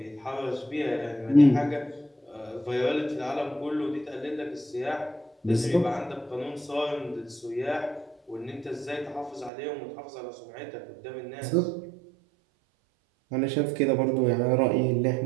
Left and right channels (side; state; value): left; drops out; at 9.5 s